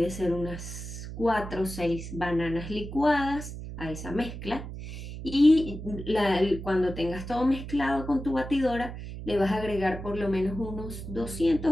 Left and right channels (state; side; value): noise; right; hum, 9 dB below the sound